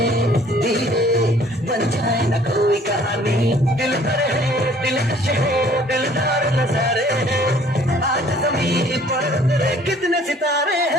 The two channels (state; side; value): normal; both; correlation 0.56